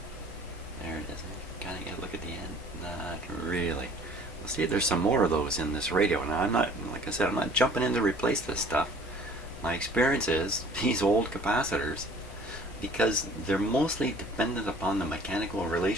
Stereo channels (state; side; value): normal; both; correlation 0.51